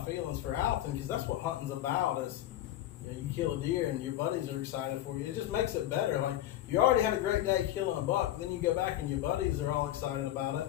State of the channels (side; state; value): right; quieter; 13.3 dB